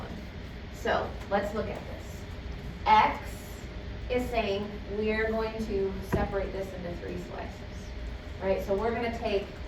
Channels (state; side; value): identical; both; correlation 1.00